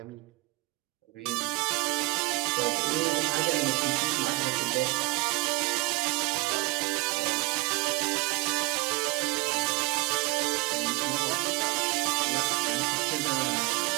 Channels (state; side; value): quieter; left; 22.7 dB